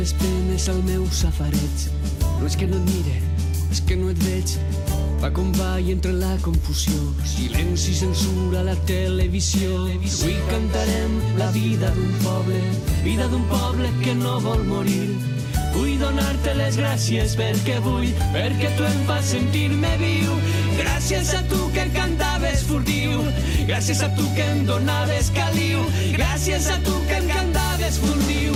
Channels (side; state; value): both; identical; correlation 1.00